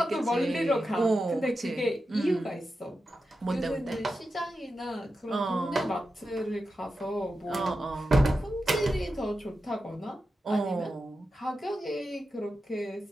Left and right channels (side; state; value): both; normal; correlation 0.90